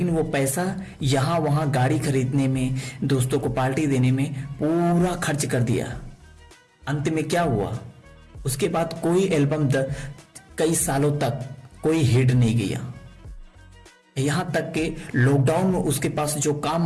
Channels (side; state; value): both; identical; correlation 1.00